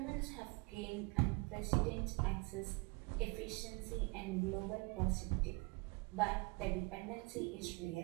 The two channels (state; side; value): quieter; left; 27.8 dB